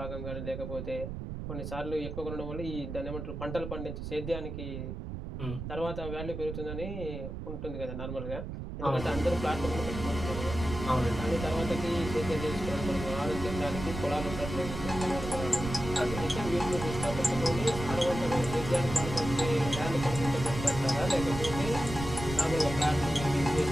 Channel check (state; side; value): noise; right; rumble, 7 dB below the sound